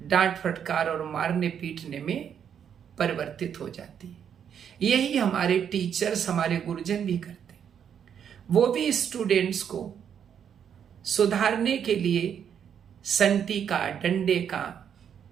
डांट फटकार और मारने पीटने में परिवर्तित हो जाती है। यही हमारे टीचर्स, हमारे गुरुजन भी करते हैं। वो भी स्टूडेंट्स को सुधारने के लिए संटी का, डंडे का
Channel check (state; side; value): quieter; left; 8.3 dB